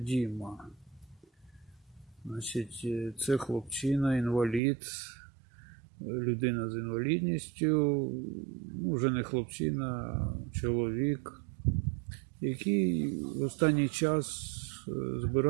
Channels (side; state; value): left; drops out; at 4.6 s